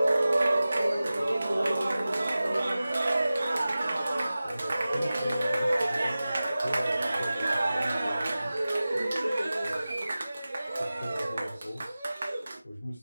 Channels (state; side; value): inverted; both; correlation -0.96